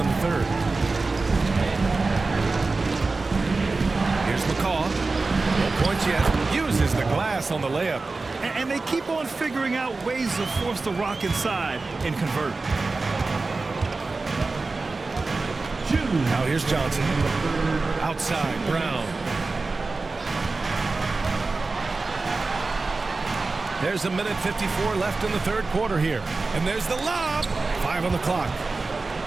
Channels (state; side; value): quieter; left; 3.7 dB